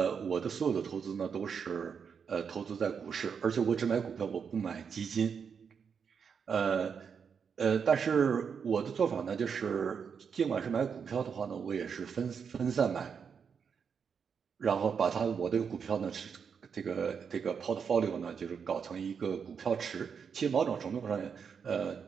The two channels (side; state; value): left; quieter; 6.6 dB